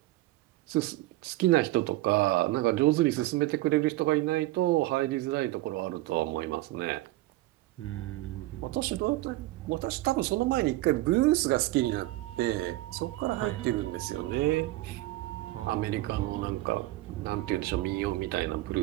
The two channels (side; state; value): left; quieter; 17.8 dB